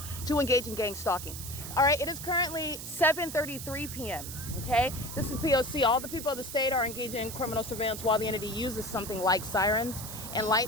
to engage in gang stalking. All right, it is currently 7:33 p.m. Okay, this is P.O.C. All the people of the state are engaging in criminal surveillance while the entity uses something like sirens and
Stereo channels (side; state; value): right; noise; hiss, 9 dB below the sound